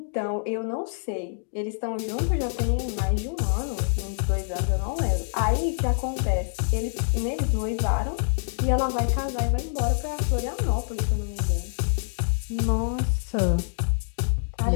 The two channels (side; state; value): right; silent; digital silence